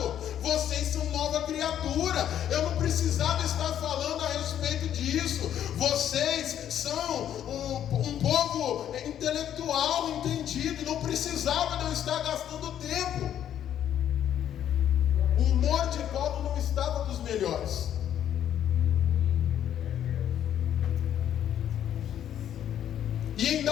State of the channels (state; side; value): quieter; right; 10.4 dB